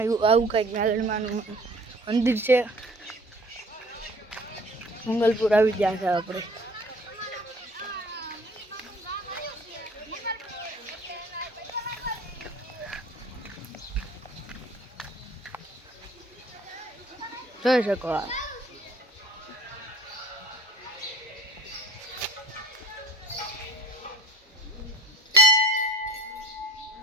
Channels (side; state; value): both; normal; correlation 0.48